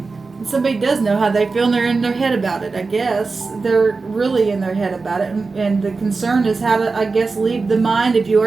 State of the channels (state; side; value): quieter; left; 4.1 dB